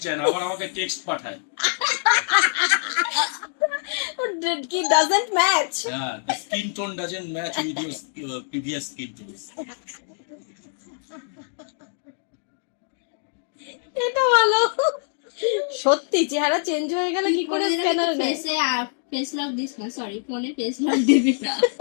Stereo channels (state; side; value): silent; right; digital silence